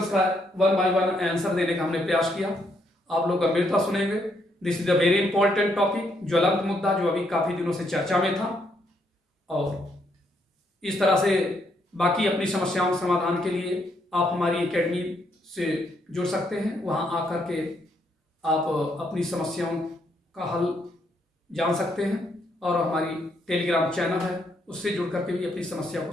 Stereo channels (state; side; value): normal; both; correlation 0.74